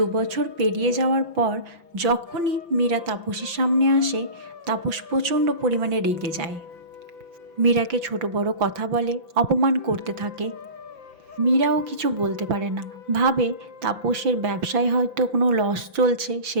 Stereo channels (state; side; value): late; left; 5.9 ms